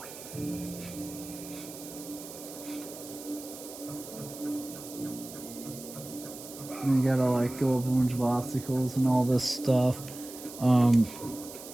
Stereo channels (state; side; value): noise; right; hiss, 14 dB below the sound